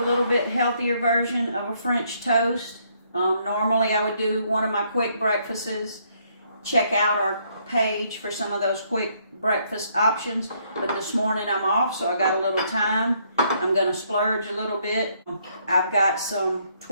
little bit healthier version of a French toast. Normally I would do one of my quick breakfasts. Check out our page for some of those quick breakfast options. But this morning I'm off, so I got a little time. I'm going to splurge a little bit. I've got some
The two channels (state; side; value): inverted; both; correlation -0.70